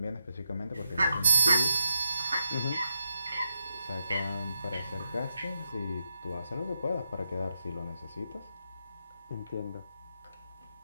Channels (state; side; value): inverted; both; correlation -0.84